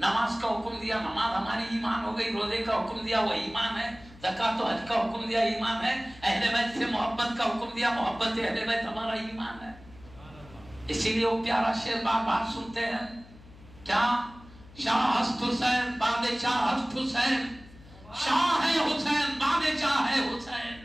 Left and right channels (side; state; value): left; noise; hum, 21 dB below the sound